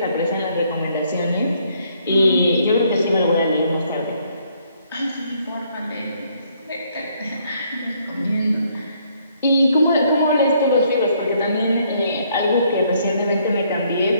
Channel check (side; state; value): both; inverted; correlation -0.68